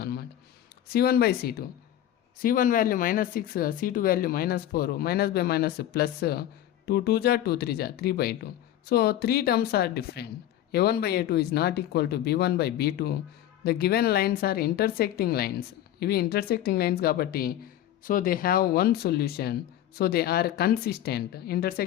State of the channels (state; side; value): quieter; right; 12.2 dB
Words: అనమాట. c1/c2 c1 value -6, c2 value -4, -/- +2 2 జా 2 3 జా 3/2. So 3 terms are different. a1/a2 is not equal to b1/b2. The given lines are intersecting lines. ఇవి intersecting lines కాబట్టి so they have one solution, so they are consistent.